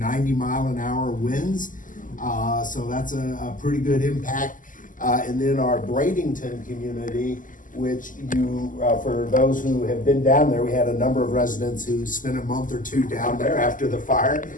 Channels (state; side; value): late; right; 0.38 ms